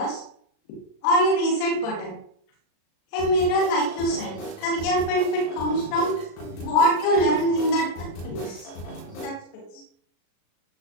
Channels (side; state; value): right; late; 36 ms